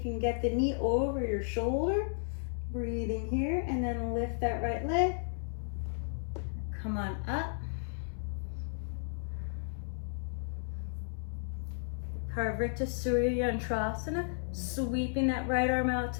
you can get the knee over your shoulder. Breathing here, and then lift that right leg. Come on up. Parvrita Suryantrasana, sweeping that right arm out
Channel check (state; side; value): silent; right; digital silence